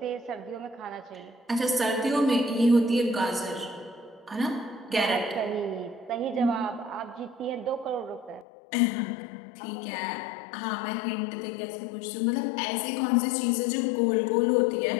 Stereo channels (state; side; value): drops out; right; at 8.5 s